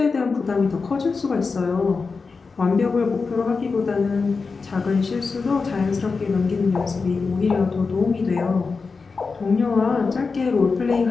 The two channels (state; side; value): quieter; right; 4.6 dB